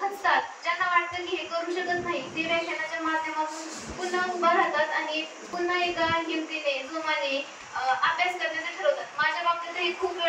खचतात, ज्यांना वाटतं की हे करू शकत नाही, ते व्याख्यानाच्या माध्यमातून पुन्हा उभा राहतात आणि पुन्हा एका हिमतीने जोमाने अभ्यास करण्याचं ठरवतात। माझ्या बाबतीत हे खूप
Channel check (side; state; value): both; identical; correlation 1.00